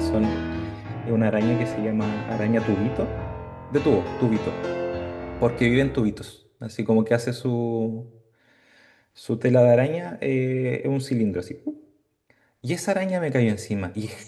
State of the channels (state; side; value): identical; both; correlation 1.00